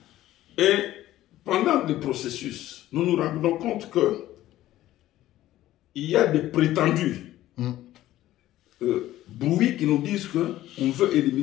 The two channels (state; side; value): quieter; right; 14.4 dB